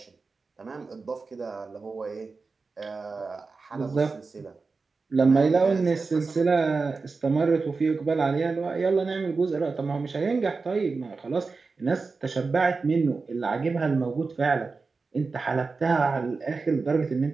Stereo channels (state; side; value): quieter; left; 4.3 dB